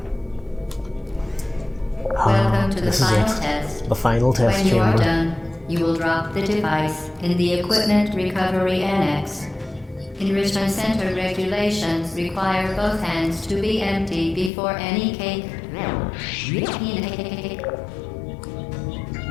Welcome to the This is final it. test. The final test When you are chamber. done, you will drop the device in the Equipment Recovery Annex. Enrichment Center regulations require both hands to be empty before any cake.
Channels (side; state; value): right; drops out; at 14.5 s